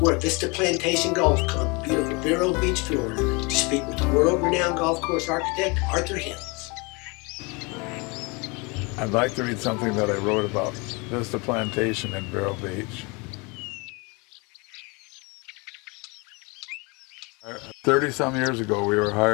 at Vista Plantation Golf Club in beautiful Vero Beach, Florida, to speak with the world-renowned golf course architect, Arthur Hills. I'd like to read something that I wrote about Vista Plantation in Vero Beach. 30-some years ago, we were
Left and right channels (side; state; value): right; quieter; 28.8 dB